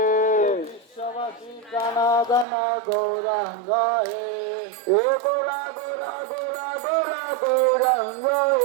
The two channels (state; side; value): drops out; left; at 2.5 s